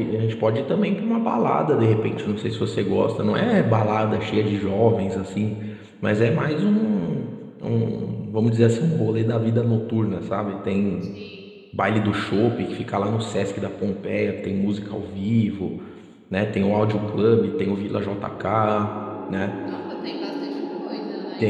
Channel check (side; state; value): both; identical; correlation 1.00